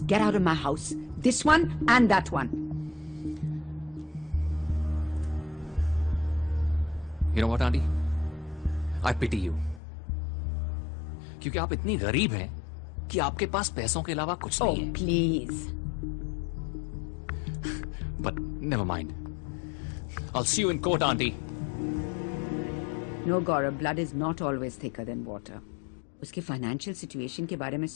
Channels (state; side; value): drops out; right; at 9.8 s